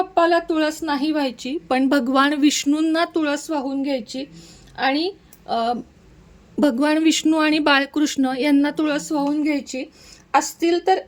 तुळस नाही व्हायची, पण भगवान विष्णूंना तुळस वाहून घ्यायची आणि भगवान विष्णू आणि बाळकृष्ण यांना तुळस वाहून घ्यायची. असतील तर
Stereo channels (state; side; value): identical; both; correlation 1.00